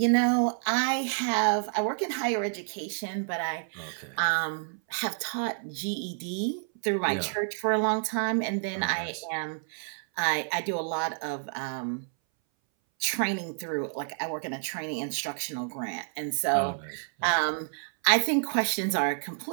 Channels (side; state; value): left; silent; 58 dB below the other